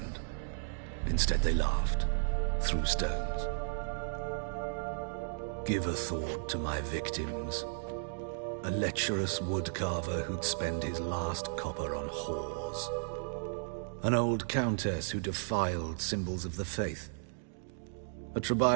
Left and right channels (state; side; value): silent; left; digital silence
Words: Instead they laughed, threw stones. Give a thought to my victims. A lecherous woodcarver who'd spend his last copper on whores. An old countess who defiled symbols of the faith. A